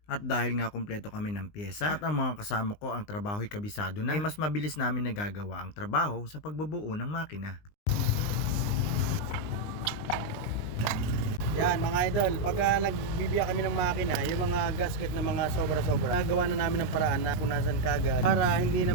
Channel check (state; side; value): late; right; 19 ms